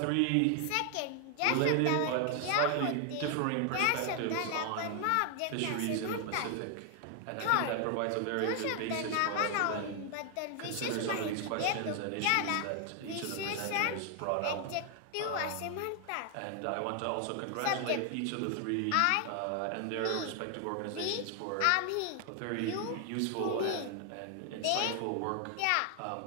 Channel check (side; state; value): both; different; correlation 0.00